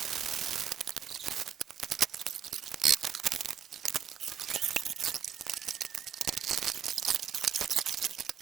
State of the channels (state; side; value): quieter; left; 9.1 dB